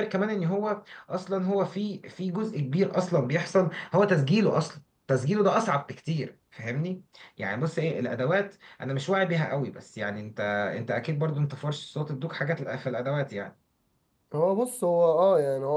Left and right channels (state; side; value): identical; both; correlation 1.00